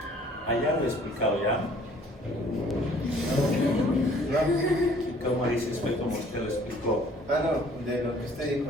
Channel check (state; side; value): normal; both; correlation 0.56